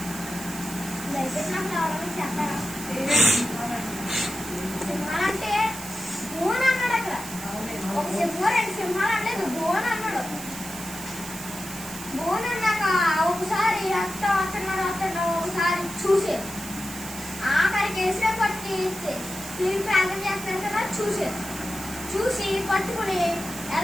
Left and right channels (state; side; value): noise; right; hiss, 11 dB below the sound